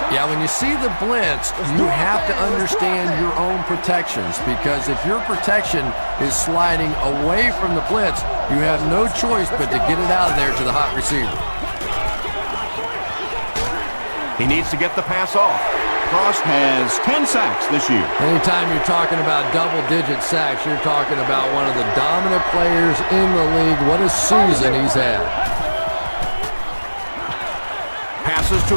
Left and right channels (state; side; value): inverted; both; correlation -1.00